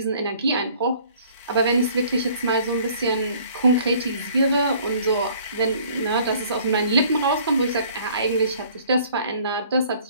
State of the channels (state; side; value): inverted; both; correlation -0.55